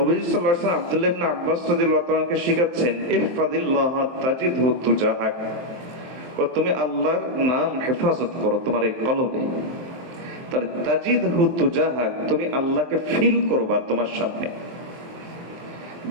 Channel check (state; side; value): late; left; 23 ms